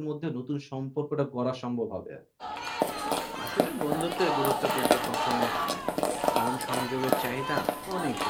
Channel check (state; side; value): identical; both; correlation 1.00